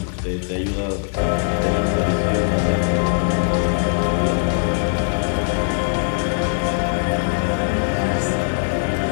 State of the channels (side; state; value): right; silent; digital silence